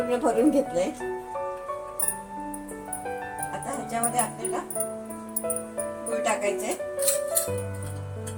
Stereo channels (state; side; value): identical; both; correlation 1.00